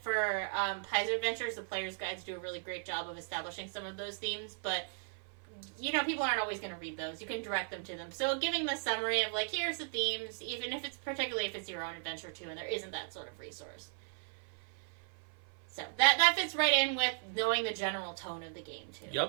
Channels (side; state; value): left; silent; 53 dB below the other